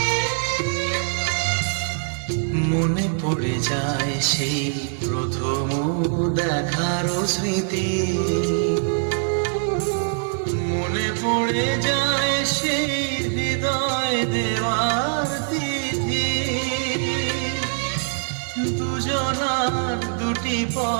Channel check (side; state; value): left; silent; digital silence